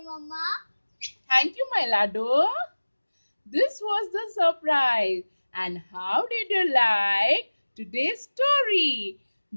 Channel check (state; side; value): inverted; both; correlation -1.00